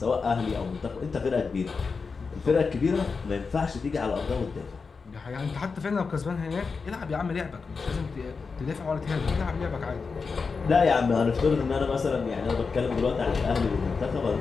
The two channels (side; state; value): right; quieter; 4.9 dB